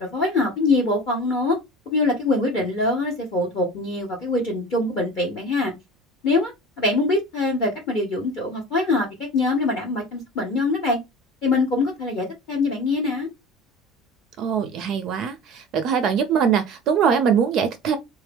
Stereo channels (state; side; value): normal; both; correlation 0.36